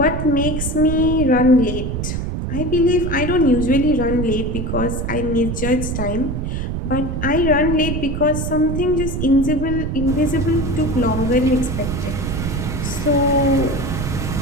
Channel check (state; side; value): noise; right; rumble, 3 dB below the sound